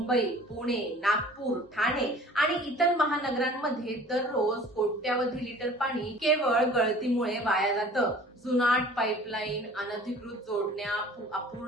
पुणे, नागपूर, ठाणे आणि इतर महानगरांमध्ये दररोज कोट्यावधी लिटर पाणी केवळ गळतीमुळे वाया जातं। जुनाट पाईपलाईन, अनधिकृत जोडण्या,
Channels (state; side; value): normal; both; correlation 0.47